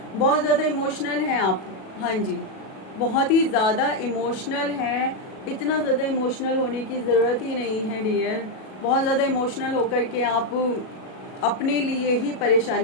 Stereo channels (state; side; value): late; right; 37 ms